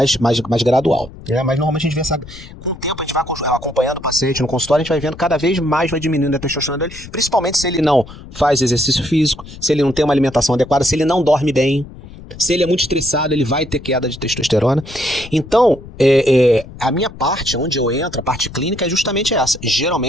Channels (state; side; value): noise; left; rumble, 16 dB below the sound